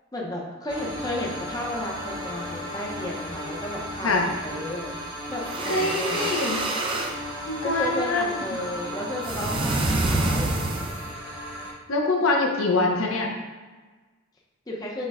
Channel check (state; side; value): normal; both; correlation 0.25